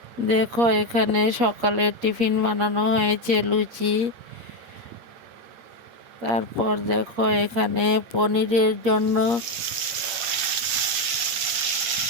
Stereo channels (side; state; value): left; late; 8.4 ms